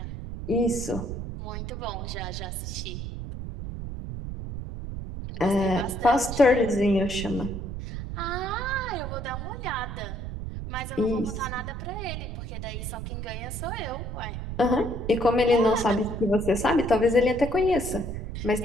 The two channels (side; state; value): right; noise; rumble, 6 dB below the sound